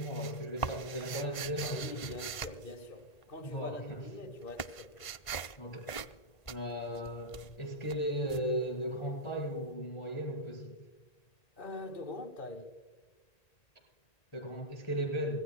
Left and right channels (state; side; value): late; right; 1.5 ms